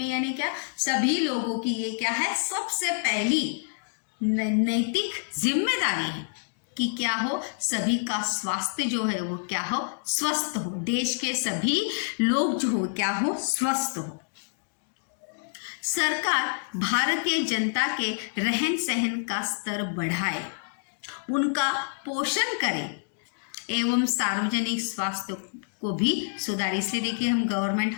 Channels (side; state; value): right; silent; digital silence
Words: यानी क्या, सभी लोगों की ये क्या है, सबसे पहली नैतिक जिम्मेदारी है कि क्या हो, सभी का स्वास्थ्य जो है वो क्या हो, स्वस्थ हो, देश के सभी लोग जो हो क्या हो, स्वस्थ हो। सरकार भारतीय जनता के रहन सहन का स्तर बढ़ाए, उनका पोषण करे एवं सार्वजनिक स्वास्थ्य को भी सुधारे। इसलिए देखिए हम